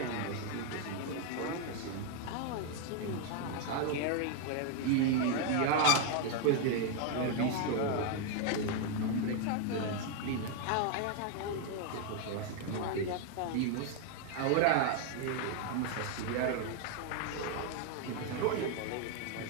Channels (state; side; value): different; both; correlation 0.01